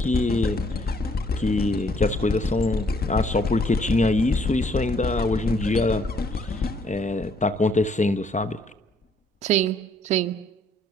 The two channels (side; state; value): both; normal; correlation 0.66